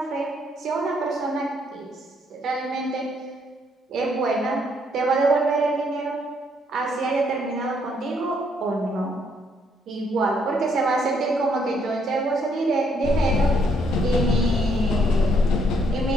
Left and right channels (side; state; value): both; normal; correlation 0.71